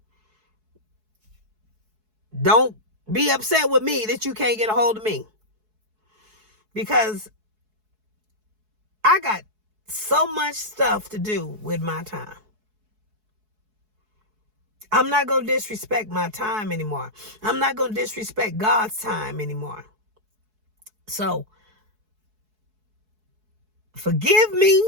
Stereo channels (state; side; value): late; left; 4.7 ms